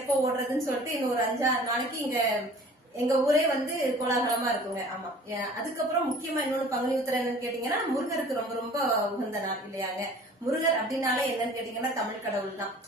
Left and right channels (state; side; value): normal; both; correlation 0.47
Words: ஓடுறதுன்னு சொல்லிட்டு இன்னும் ஒரு 5-6 நாளைக்கு இங்க எங்க ஊரே வந்து கோலாகலமா இருக்குங்க. ஆமா, அதுக்கப்புறம் முக்கியமா இன்னொன்னு பங்குனி உத்திரம் என்னன்னு கேட்டீங்கன்னா, முருகருக்கு ரொம்ப ரொம்ப உகந்த நாள் இல்லையாங்க. முருகர் அப்படின்னாலே என்னன்னு கேட்டீங்கன்னா தமிழ் கடவுள் தான்.